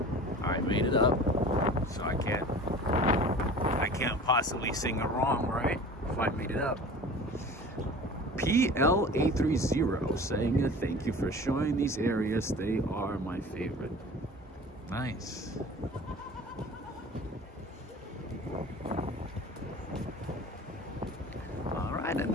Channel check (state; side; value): normal; both; correlation 0.41